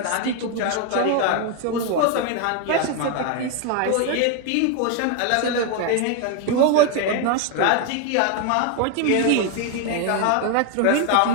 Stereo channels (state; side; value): different; both; correlation 0.01